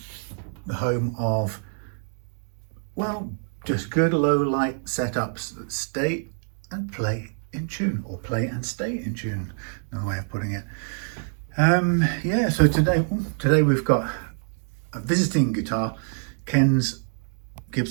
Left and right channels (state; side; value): silent; left; digital silence